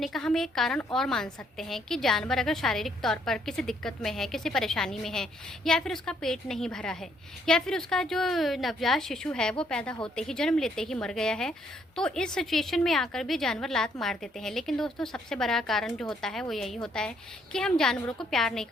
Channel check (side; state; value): both; normal; correlation 0.69